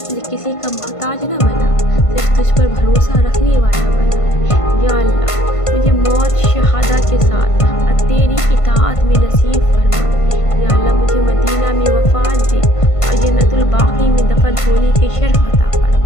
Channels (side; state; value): right; late; 1.5 ms